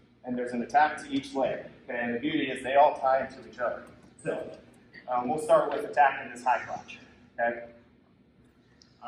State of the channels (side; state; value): both; identical; correlation 1.00